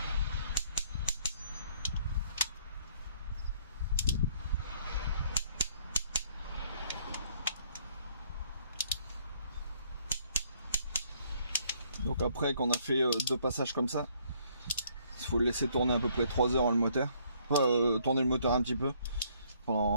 Donc après qu'on a fait 2 passages comme ça, il faut le laisser tourner à peu près 3 heures le moteur. Tourner le moteur un petit peu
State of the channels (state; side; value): inverted; both; correlation -0.65